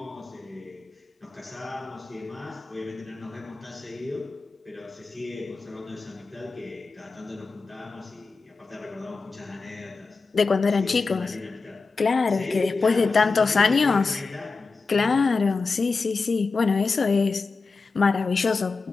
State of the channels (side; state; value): right; quieter; 4.2 dB